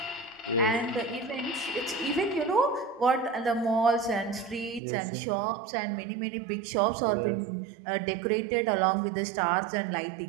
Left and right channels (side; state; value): left; drops out; at 4.8 s